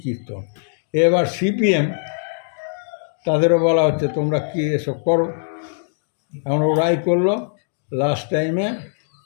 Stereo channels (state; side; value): silent; right; digital silence